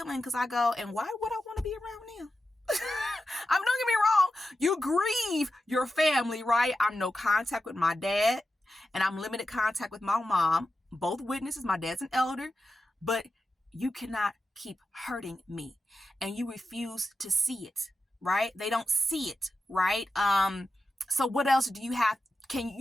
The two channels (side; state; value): both; normal; correlation 0.90